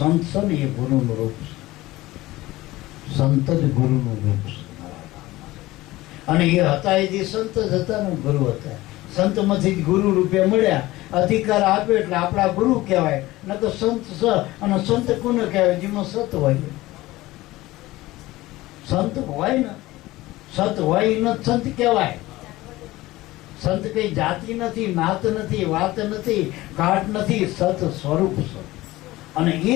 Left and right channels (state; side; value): quieter; right; 18.2 dB